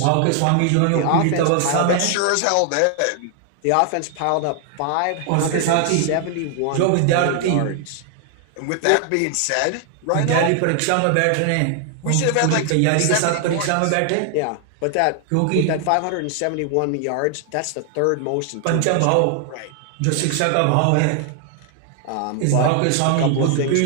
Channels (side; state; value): both; different; correlation 0.00